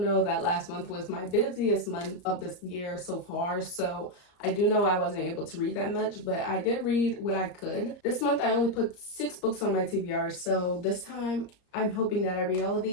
that last month was my busiest month of this year so far, so I do know I wasn't able to read that much, but I did read what I could. This month I only put 6 books on my TBR, so this time I'm hoping that I read all of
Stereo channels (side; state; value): right; late; 34 ms